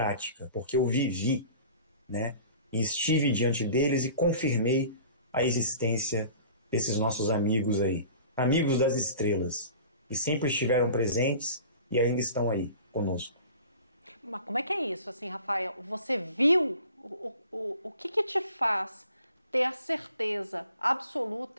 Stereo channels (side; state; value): both; inverted; correlation -0.44